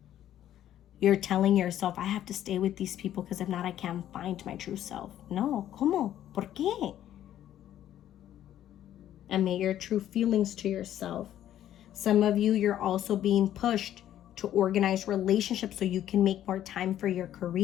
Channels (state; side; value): quieter; right; 11.7 dB